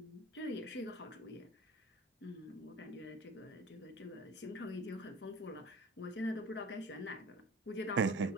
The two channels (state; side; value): normal; both; correlation 0.40